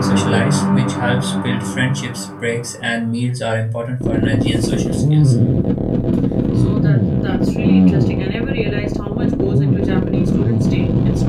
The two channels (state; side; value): identical; both; correlation 1.00